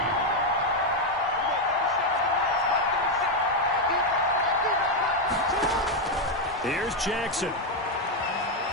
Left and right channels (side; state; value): both; normal; correlation 0.03